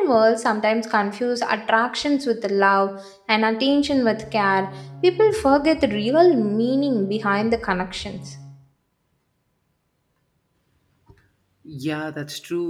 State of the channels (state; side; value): identical; both; correlation 1.00